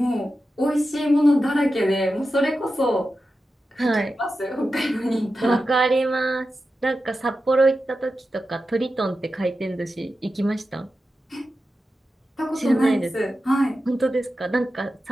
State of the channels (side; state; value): both; normal; correlation 0.91